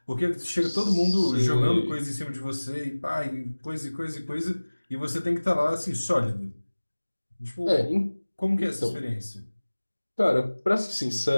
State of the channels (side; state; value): both; inverted; correlation -1.00